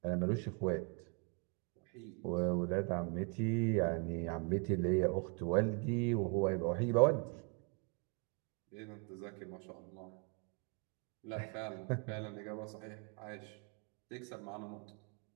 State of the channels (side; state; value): left; quieter; 35.7 dB